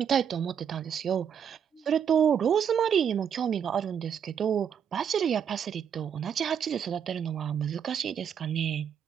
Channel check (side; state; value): left; quieter; 8.0 dB